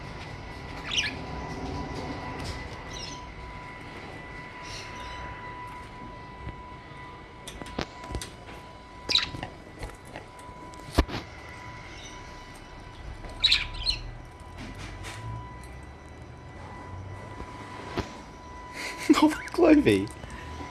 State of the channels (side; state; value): both; identical; correlation 1.00